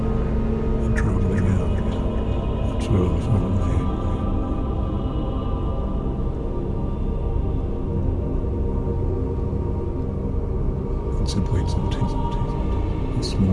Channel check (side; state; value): both; identical; correlation 1.00